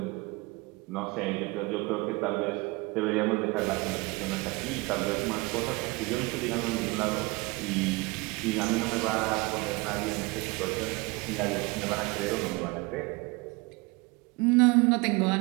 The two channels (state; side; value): quieter; left; 25.2 dB